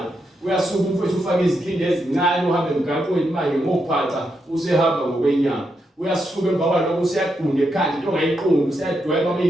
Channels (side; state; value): both; normal; correlation 0.82